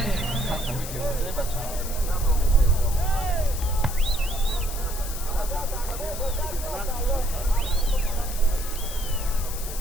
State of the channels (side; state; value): left; noise; hiss, 9 dB below the sound